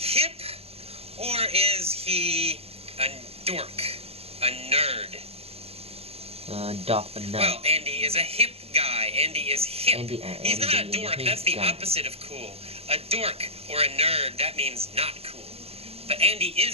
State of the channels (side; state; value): left; late; 0.29 ms